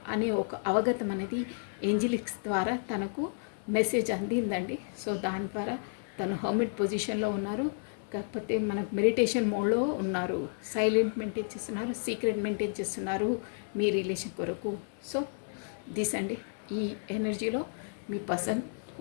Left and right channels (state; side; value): silent; right; digital silence